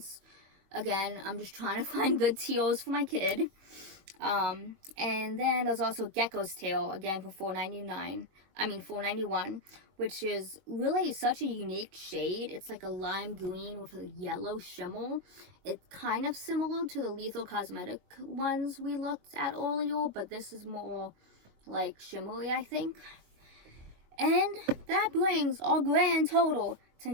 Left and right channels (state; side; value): late; left; 21 ms